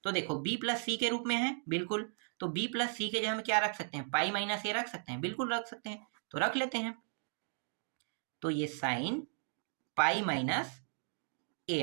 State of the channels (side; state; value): left; silent; 54 dB below the other